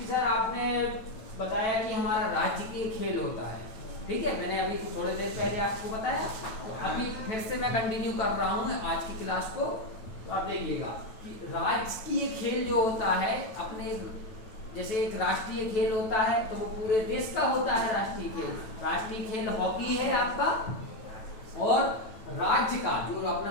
सर आपने बताया कि हमारा राजकीय खेल होता है, ठीक है। मैंने अभी थोड़ी देर पहले आपको बताया, तो अभी फिर से मैं कंटिन्यू कर रहा हूँ आज की क्लास को। तो आप देखिएगा कि राजकीय खेल जो होता है अपने, जैसे एक राष्ट्रीय खेल होता है तो वो पूरे देश का होता है राष्ट्रीय खेल। राष्ट्रीय खेल हॉकी है आपका, और राज्य का जो अपना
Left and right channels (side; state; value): right; late; 9.1 ms